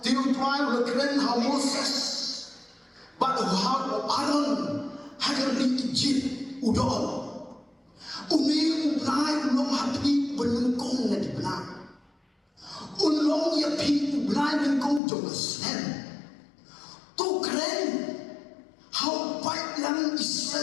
tiu tuai berkeren how Moses, but how Aaron agar diijib udol. Umi ulai ulong hapi benengkong nanti benar. Ulong ya pi ulai benengkong jauh sen. Tu keren how baik yang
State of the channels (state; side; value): drops out; right; at 15.0 s